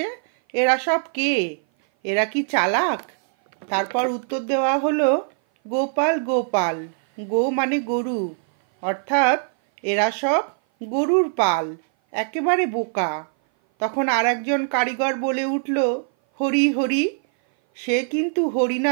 এরা সব কে? এরা কি চালাক? তারপর উত্তর দেওয়া হলো, গোপাল গোপাল। গো মানে গরু, অর্থাৎ এরা সব গরুর পাল, একেবারে বোকা। তখন আর একজন কারিগর বলে উঠল, হরি হরি। সে কিন্তু হরি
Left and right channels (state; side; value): silent; left; 58 dB below the other